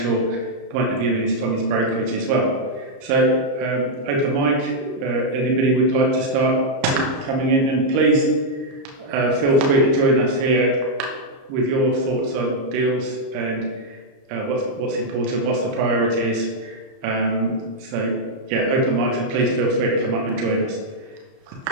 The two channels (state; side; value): late; left; 29 ms